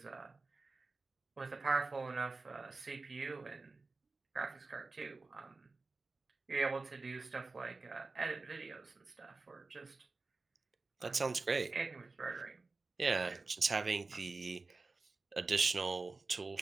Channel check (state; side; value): quieter; left; 3.8 dB